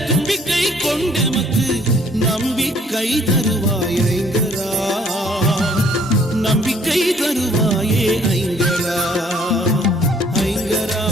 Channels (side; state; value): both; normal; correlation 0.60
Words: தும்பிக்கை கொண்டெமக்கு நம்பிக்கை தருவாய் ஐங்கரா. நம்பிக்கை தருவாயே ஐங்கரா.